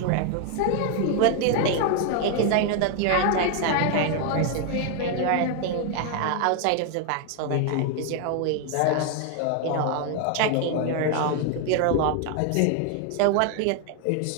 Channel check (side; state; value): both; different; correlation 0.00